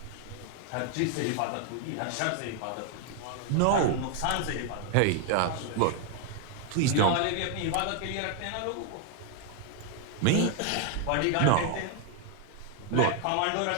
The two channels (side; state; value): both; different; correlation 0.00